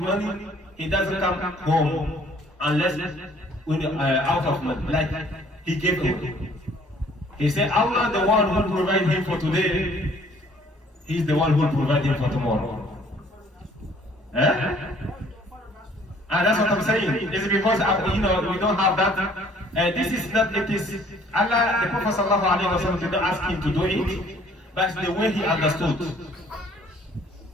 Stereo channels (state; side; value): normal; both; correlation 0.58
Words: money, he doesn't come home unless out of money, like he gave away. He said, Allah, the one who provides him for today, he's the one who will provide him for tomorrow. That's what I'm saying. It's because we don't have that. This is not. It is Allah. The Prophet ﷺ did not ask him to do it, but the way he understood.